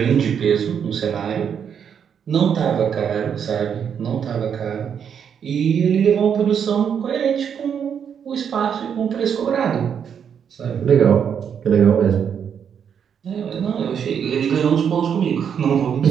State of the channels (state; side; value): quieter; left; 7.8 dB